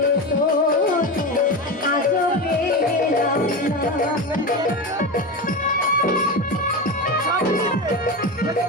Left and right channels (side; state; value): both; normal; correlation 0.21